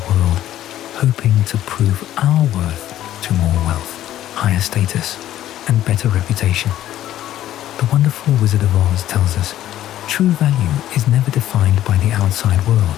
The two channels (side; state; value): right; quieter; 12.8 dB